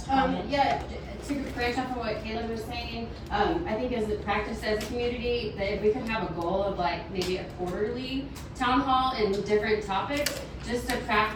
comment? Yeah, to branch off of what Caleb was saying, I think as a practice as a community, that if we could have a goal of like maybe a quarterly town hall and different topics, just to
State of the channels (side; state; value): both; identical; correlation 1.00